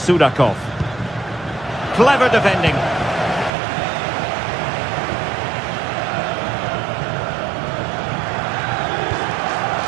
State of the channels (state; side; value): drops out; left; at 3.5 s